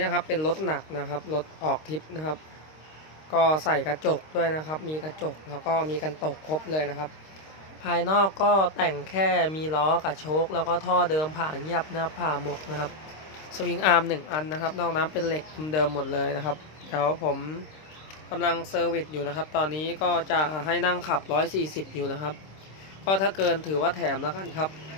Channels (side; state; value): right; late; 26 ms